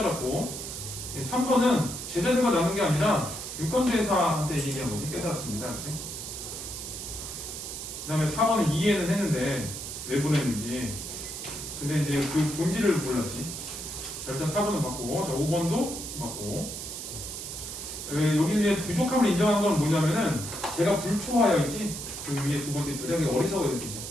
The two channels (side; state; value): right; noise; hiss, 7 dB below the sound